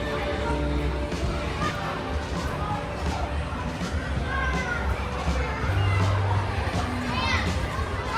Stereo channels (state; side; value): identical; both; correlation 1.00